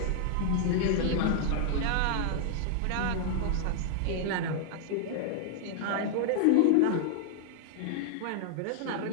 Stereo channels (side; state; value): both; different; correlation 0.00